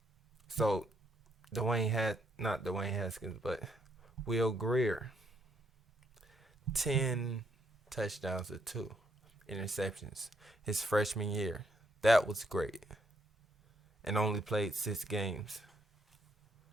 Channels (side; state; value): both; normal; correlation 0.74